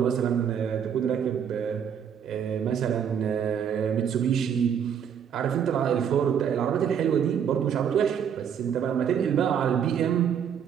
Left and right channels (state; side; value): quieter; left; 8.2 dB